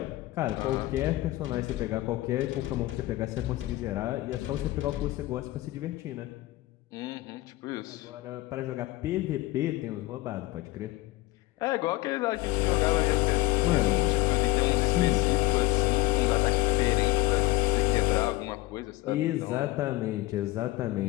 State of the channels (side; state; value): right; quieter; 18.4 dB